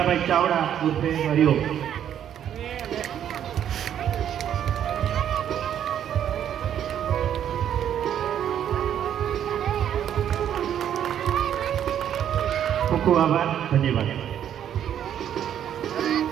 ચાવડા ઉર્ફે હરિયો. ખૂબ ખૂબ આભાર, ધન્યવાદ.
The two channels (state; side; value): quieter; left; 9.9 dB